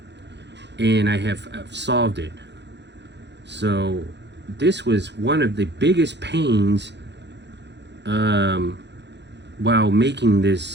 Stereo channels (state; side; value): late; left; 0.51 ms